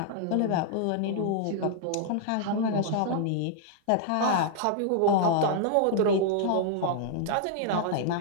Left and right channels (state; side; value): different; both; correlation -0.01